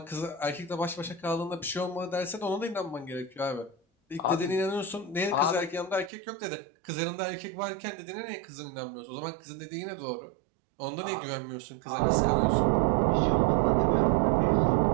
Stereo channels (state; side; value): drops out; left; at 6.1 s